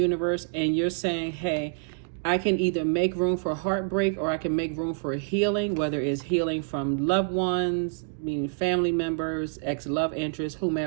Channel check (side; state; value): left; silent; 60 dB below the other